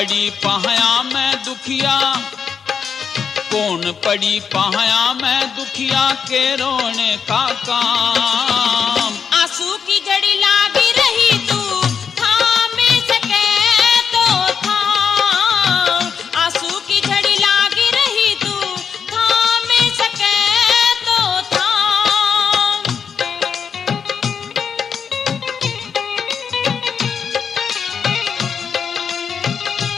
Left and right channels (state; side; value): quieter; right; 6.7 dB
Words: पाया मैं दुखिया, कौन पड़ी पाया मैं दुखिया के रोने का काम। आंसू की झड़ी लागी रही तू थाम सके तो थाम, आंसू की झड़ी लागी रही तू थाम सके तो थाम।